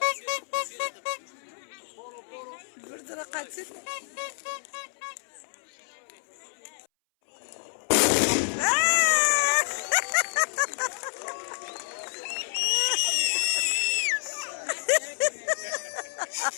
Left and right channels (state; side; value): silent; right; 59 dB below the other